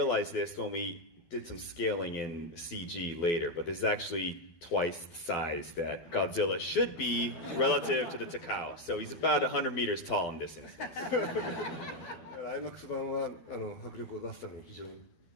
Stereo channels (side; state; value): right; late; 12 ms